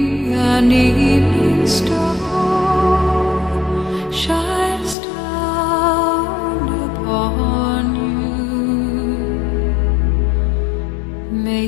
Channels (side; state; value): right; drops out; at 5.0 s